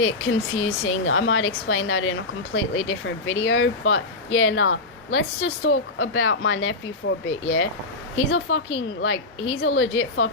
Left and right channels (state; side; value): quieter; right; 3.1 dB